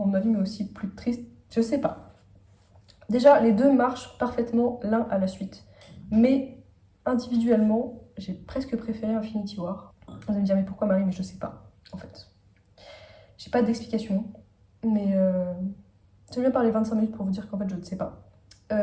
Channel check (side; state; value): both; identical; correlation 1.00